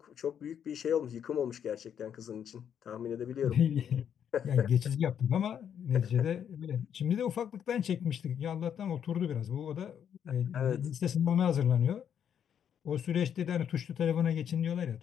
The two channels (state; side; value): quieter; right; 8.7 dB